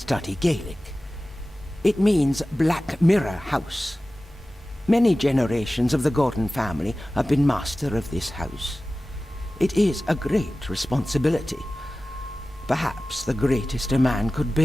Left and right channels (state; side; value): normal; both; correlation 0.96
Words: Gaelic. It means Black Mirror House. Many generations of the Gordon family have been master of this house. It is a great responsibility. Perhaps the greatest a man could